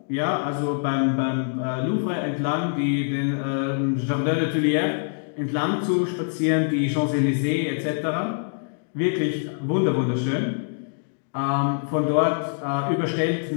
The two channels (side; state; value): right; silent; digital silence